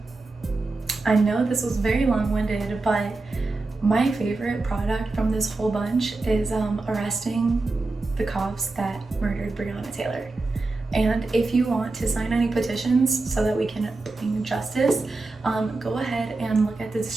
I know this was very long-winded, but my favorite product from this whole bunch is arresting the cops that murdered Breonna Taylor. And if you want to sign any petitions so that we can bring justice, go ahead and look at the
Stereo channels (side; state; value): left; quieter; 3.4 dB